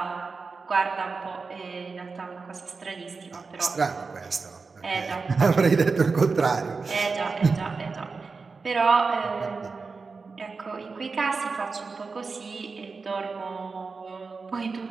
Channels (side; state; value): left; quieter; 4.5 dB